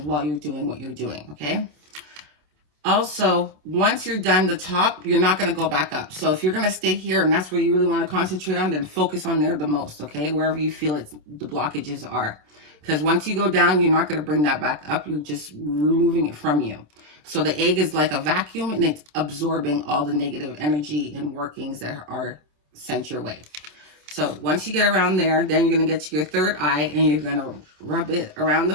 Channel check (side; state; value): left; late; 27 ms